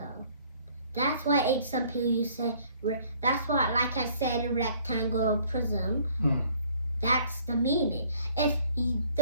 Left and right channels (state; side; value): inverted; both; correlation -0.59